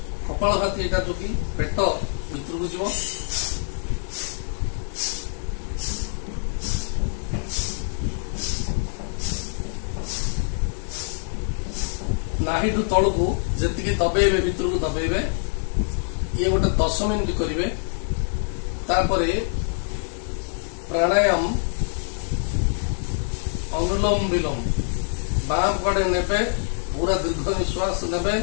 कपालभाति एटा जो कि पेट भितर को जीव। नाहिडू तल को जी दबेबे भितर को दबेबे। ये गोटे 10 मिनिट करेंगे। तापरे प्राणायाम अनुलोम विलोम बाम पटे नेबे, पूरा दीर्घ निश्वास नेबे,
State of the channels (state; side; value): silent; right; digital silence